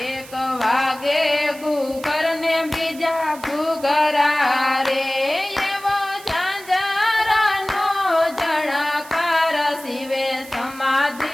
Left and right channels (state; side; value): noise; right; hiss, 18 dB below the sound